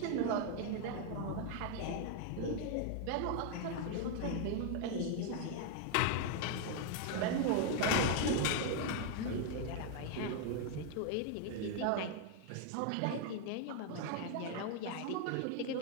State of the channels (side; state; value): both; different; correlation 0.00